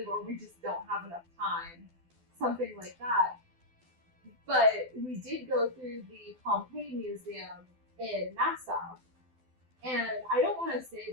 or we just don't have enough time, something like that. But we did go through the Pompeii Museum in Nassau, and I don't want to say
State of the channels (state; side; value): late; left; 12 ms